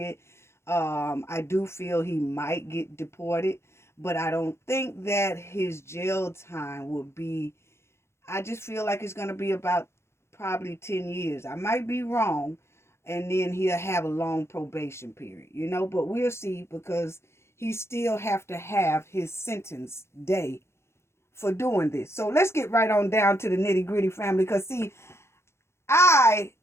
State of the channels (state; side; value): late; right; 0.13 ms